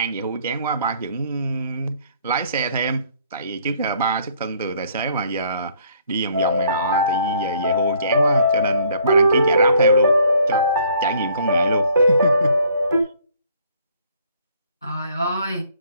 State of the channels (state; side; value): inverted; both; correlation -0.62